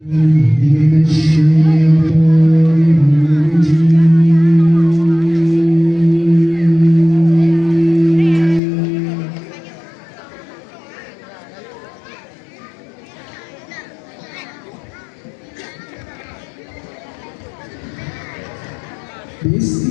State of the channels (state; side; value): drops out; right; at 8.6 s